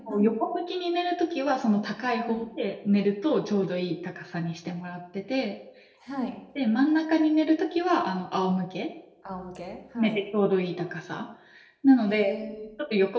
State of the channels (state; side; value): identical; both; correlation 1.00